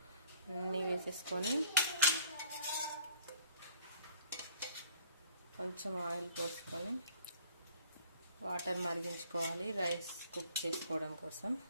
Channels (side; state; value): both; inverted; correlation -0.56